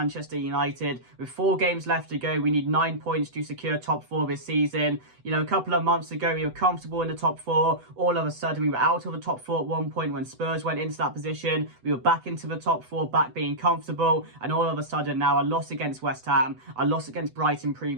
United. With 4 games left to go, we need 9 points to secure top 4 this season. You know, a couple of months ago, we were comfortable in the top 4. All of a sudden, we were out of the top 4 at one point when Spurs went into that position. We were back into the top 4, back being comfortable. And all of a sudden now, a loss against West Ham, a loss against Brighton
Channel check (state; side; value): late; left; 8.0 ms